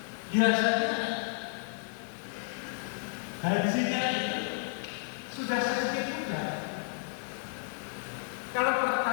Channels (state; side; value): silent; right; digital silence